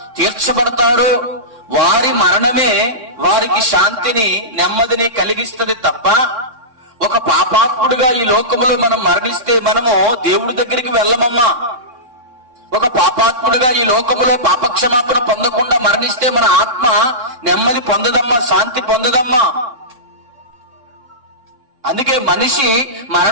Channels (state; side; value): late; left; 3.6 ms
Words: తీర్చబడతారో వారి మరణమే వారికి శాంతిని నెమ్మదిని కలిగిస్తుంది తప్ప, ఒక పాపాత్ముడుగా ఈ లోకంలో మనం మరణిస్తే మనము దేవుడి దగ్గరికి వెళ్ళమమ్మా. ఒక పాపాత్ముడుగా ఈ లోకంలో పాపక్షమాపణ పొందకుండా మరణిస్తే మన ఆత్మ నెమ్మది పొందదమ్మా, శాంతి పొందదమ్మా. అందుకే మనిషి